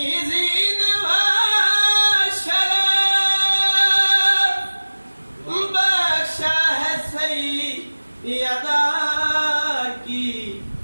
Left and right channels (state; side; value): inverted; both; correlation -1.00